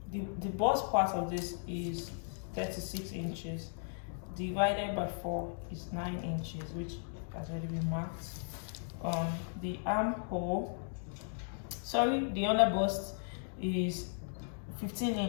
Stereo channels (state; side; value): silent; right; digital silence